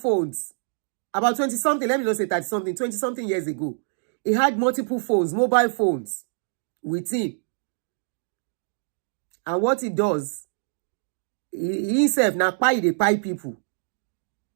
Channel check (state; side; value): silent; left; digital silence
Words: About 20-something, let me not say 30-something, 20-something years ago. He had multiple phones, mobile phones with him. And what he does, he himself na pay people.